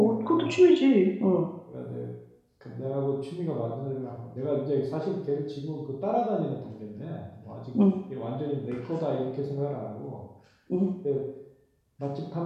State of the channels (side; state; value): both; identical; correlation 1.00